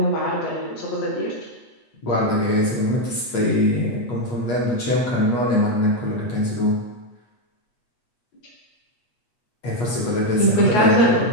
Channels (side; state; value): right; late; 8.3 ms